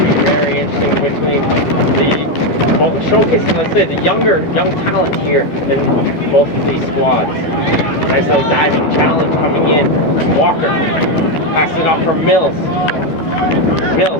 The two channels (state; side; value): late; right; 12 ms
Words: very interesting between showcasing, let's say, the young talent here in both of these squads. Nice little diving challenge coming in. Walker passes it off for Mills.